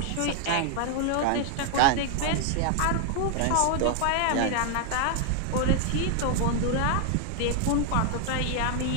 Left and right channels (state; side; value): different; both; correlation 0.00